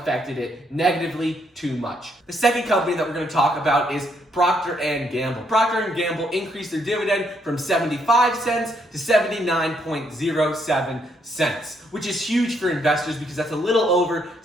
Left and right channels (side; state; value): both; normal; correlation 0.73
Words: it negatively too much. The second company that we're going to talk about is Procter & Gamble. Procter & Gamble increased their dividend from 75 cents to 79.07 cents, which is huge for investors because that's a little over